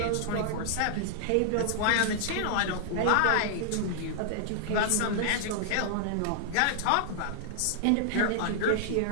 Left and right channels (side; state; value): both; different; correlation -0.01